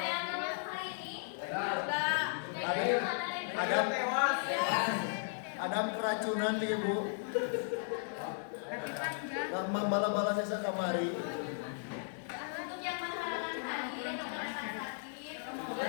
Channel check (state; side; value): silent; right; 54 dB below the other